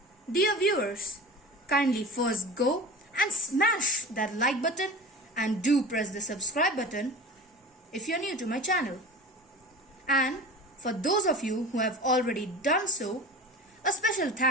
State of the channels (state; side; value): normal; both; correlation 0.35